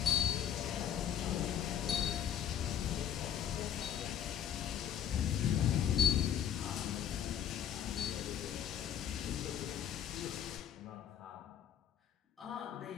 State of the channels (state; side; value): quieter; right; 9.7 dB